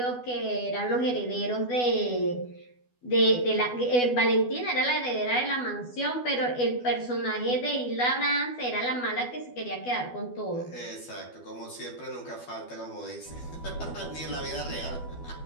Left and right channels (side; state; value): right; late; 12 ms